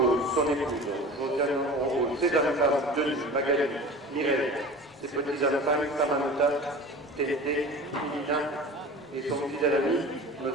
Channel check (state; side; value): normal; both; correlation 0.37